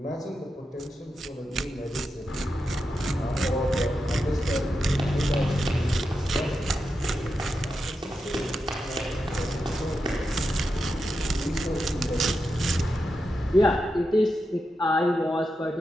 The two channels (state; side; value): normal; both; correlation 0.88